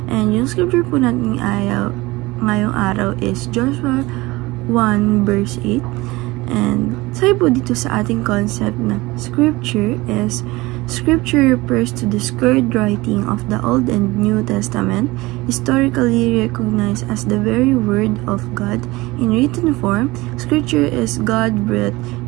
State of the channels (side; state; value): left; quieter; 21.1 dB